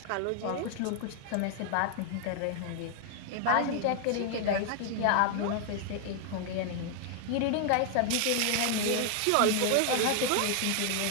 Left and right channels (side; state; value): both; different; correlation 0.00